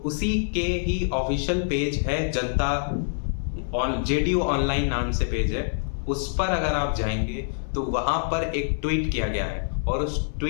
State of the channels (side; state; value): right; silent; 61 dB below the other